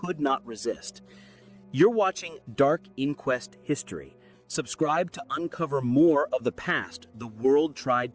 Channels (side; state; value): both; identical; correlation 1.00